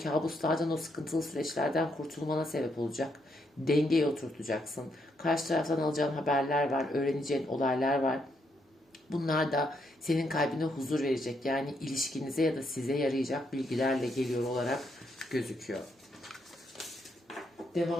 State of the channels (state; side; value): normal; both; correlation 0.77